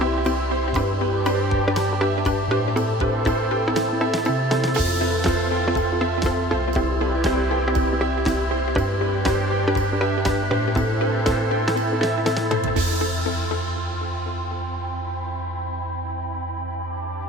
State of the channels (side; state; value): both; normal; correlation 0.54